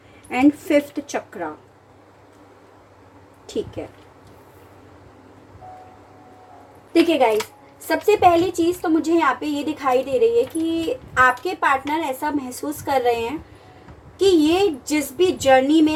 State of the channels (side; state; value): both; identical; correlation 1.00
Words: and 5th चक्रा। ठीक है, देखिए गाइस, सबसे पहली चीज तो मुझे यहाँ पे ये दिखाई दे रही है कि आपके पार्टनर ऐसा महसूस कर रहे हैं कि ये जिस भी जर्नी